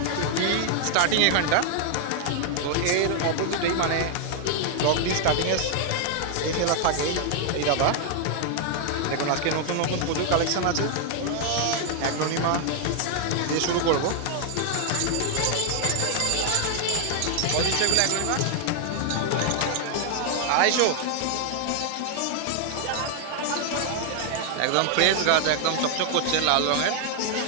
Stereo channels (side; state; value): both; different; correlation 0.00